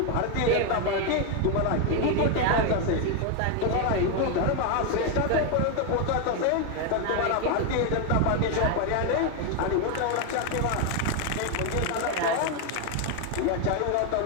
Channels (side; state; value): both; different; correlation 0.01